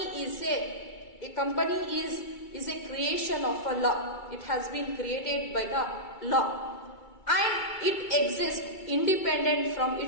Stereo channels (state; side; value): late; right; 2.3 ms